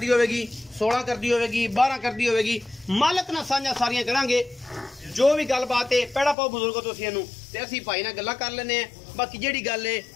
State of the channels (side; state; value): right; drops out; at 6.4 s